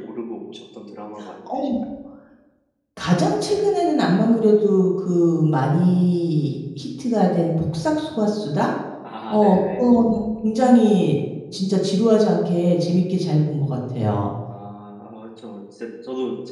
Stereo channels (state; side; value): identical; both; correlation 1.00